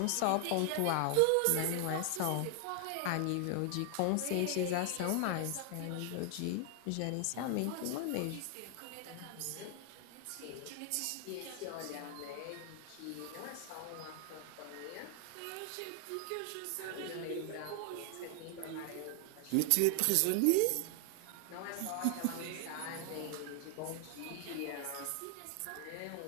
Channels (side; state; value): both; different; correlation 0.00